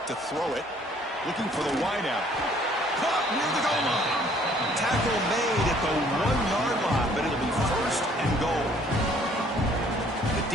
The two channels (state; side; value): normal; both; correlation 0.60